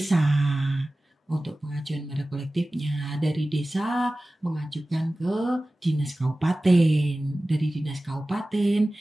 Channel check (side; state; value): both; normal; correlation 0.97